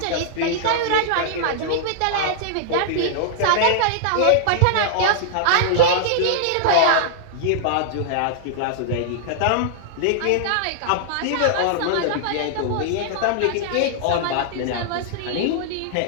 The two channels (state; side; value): different; both; correlation -0.01